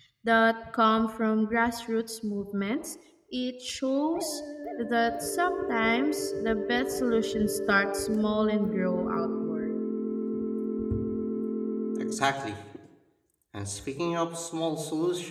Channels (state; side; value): identical; both; correlation 1.00